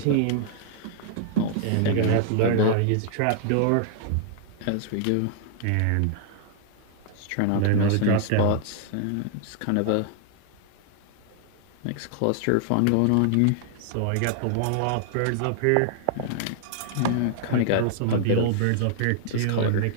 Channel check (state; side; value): different; both; correlation 0.00